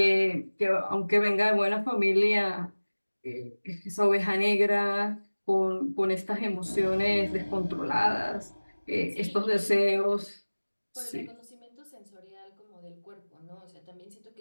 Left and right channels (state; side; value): inverted; both; correlation -1.00